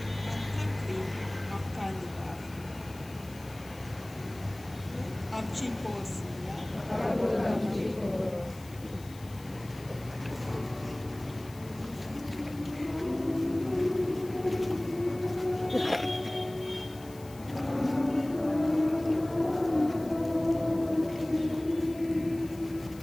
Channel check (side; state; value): left; noise; hiss, 21 dB below the sound